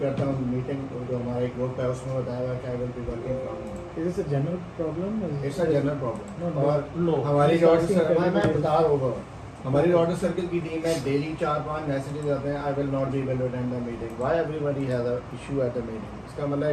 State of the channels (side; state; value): both; identical; correlation 1.00